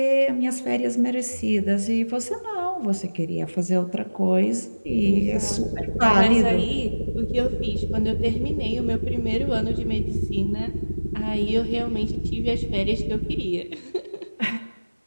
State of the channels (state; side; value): inverted; both; correlation -1.00